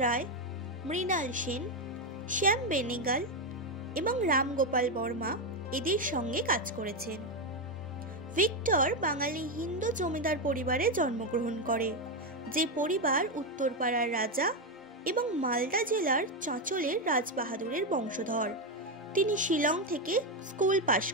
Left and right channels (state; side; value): normal; both; correlation 0.07